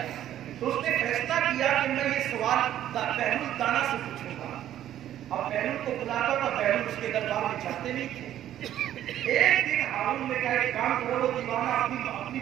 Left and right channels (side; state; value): left; quieter; 11.8 dB